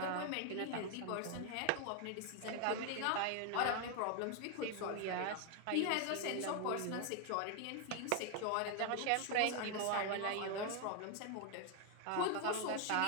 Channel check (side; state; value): both; different; correlation 0.01